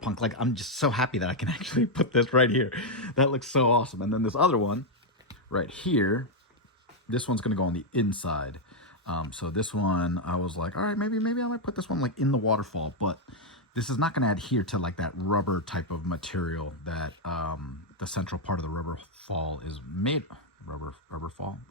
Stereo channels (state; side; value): normal; both; correlation 0.00